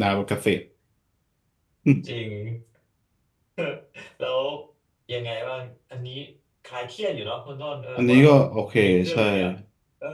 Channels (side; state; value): both; identical; correlation 1.00